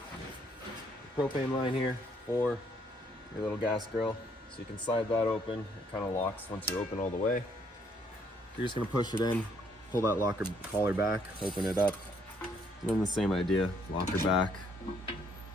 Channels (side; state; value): both; normal; correlation 0.68